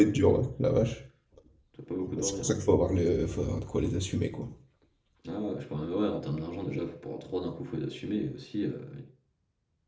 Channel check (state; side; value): identical; both; correlation 1.00